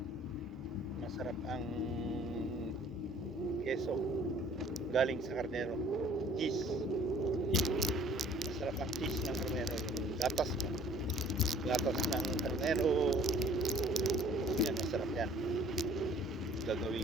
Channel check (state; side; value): normal; both; correlation 0.54